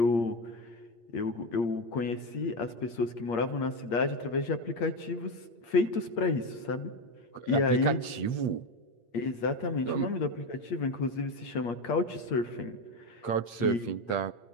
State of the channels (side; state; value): right; late; 8.5 ms